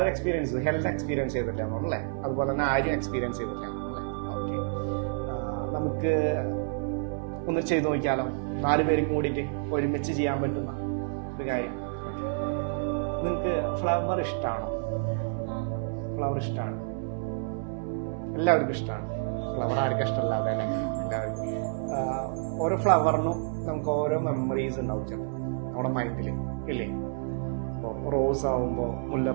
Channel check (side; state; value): left; silent; 59 dB below the other